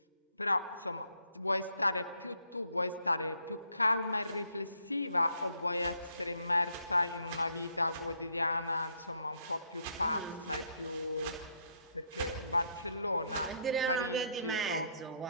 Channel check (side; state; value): both; inverted; correlation -0.70